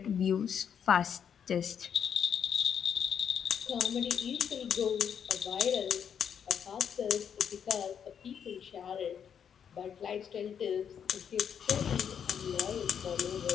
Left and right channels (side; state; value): right; quieter; 8.0 dB